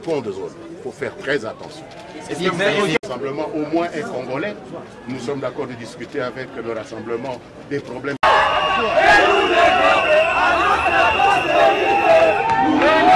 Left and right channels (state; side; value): identical; both; correlation 1.00